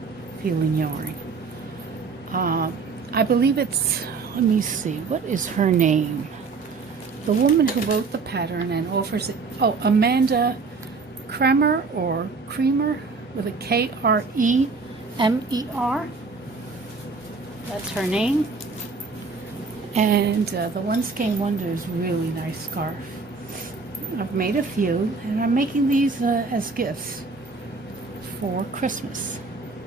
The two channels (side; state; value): left; quieter; 4.5 dB